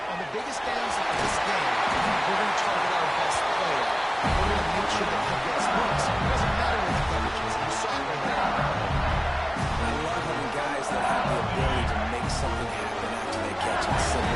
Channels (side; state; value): both; identical; correlation 1.00